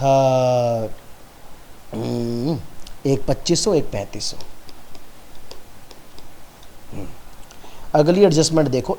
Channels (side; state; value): both; identical; correlation 1.00